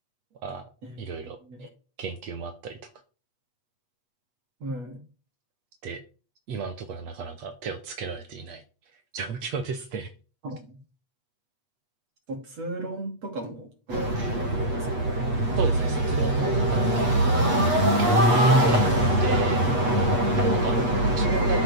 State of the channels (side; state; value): left; late; 8.3 ms